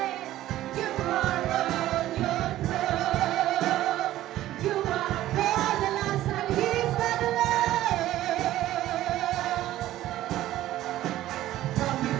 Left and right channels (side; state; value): left; quieter; 14.3 dB